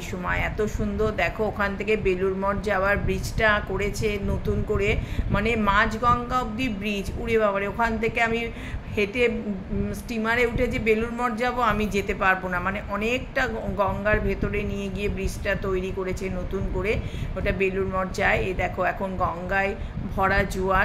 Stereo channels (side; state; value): both; identical; correlation 1.00